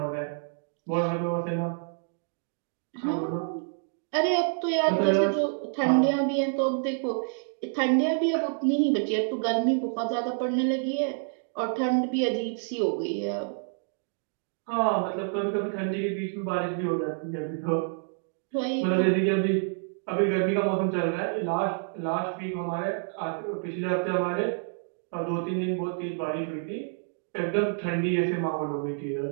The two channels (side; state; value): left; silent; digital silence